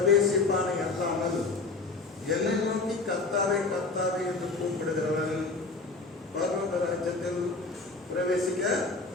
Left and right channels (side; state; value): right; quieter; 3.8 dB